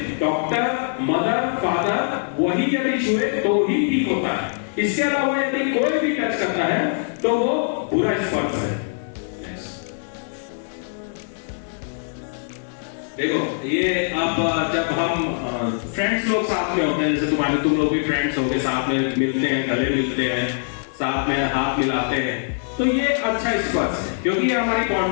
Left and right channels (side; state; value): right; silent; digital silence